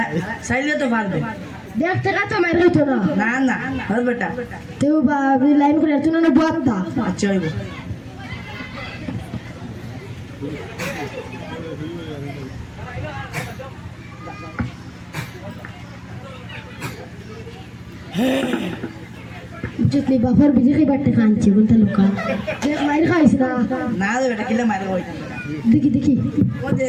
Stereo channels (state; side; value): identical; both; correlation 1.00